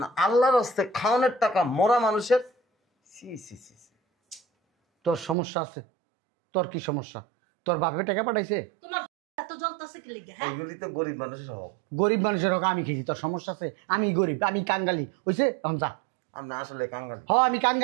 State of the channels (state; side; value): drops out; left; at 5.4 s